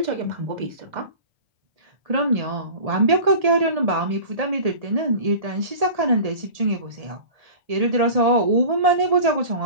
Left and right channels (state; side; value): late; left; 1.8 ms